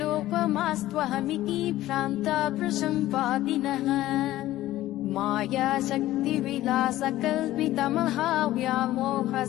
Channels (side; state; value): right; quieter; 15.2 dB